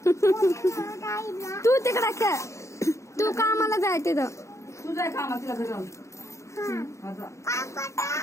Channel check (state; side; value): late; right; 0.14 ms